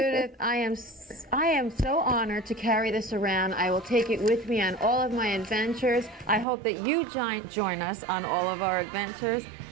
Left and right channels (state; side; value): drops out; left; at 6.5 s